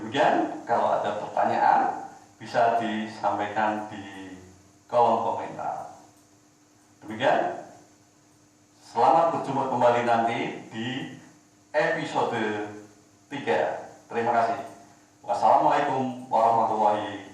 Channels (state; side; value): identical; both; correlation 1.00